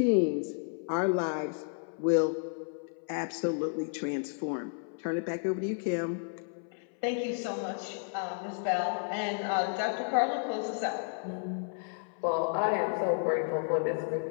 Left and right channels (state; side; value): silent; right; 56 dB below the other